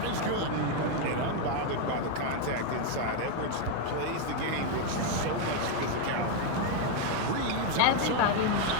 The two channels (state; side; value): different; both; correlation 0.01